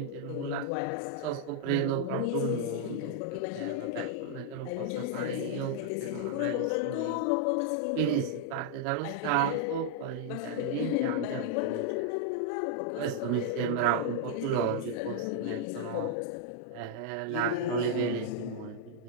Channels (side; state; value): both; different; correlation -0.01